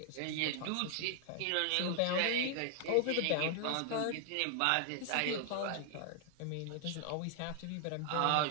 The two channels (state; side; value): different; both; correlation 0.00